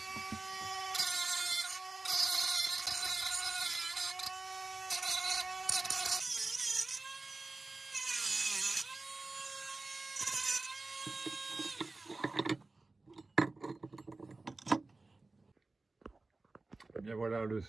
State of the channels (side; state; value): left; quieter; 3.4 dB